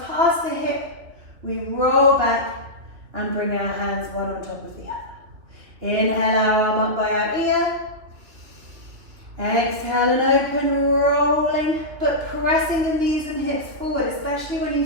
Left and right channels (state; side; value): late; left; 3.2 ms